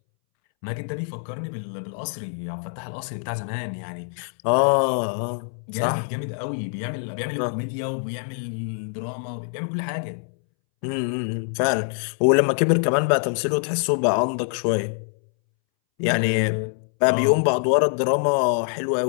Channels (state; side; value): silent; right; 62 dB below the other